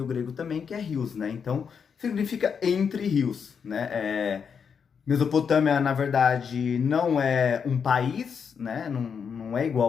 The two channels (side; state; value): right; quieter; 6.6 dB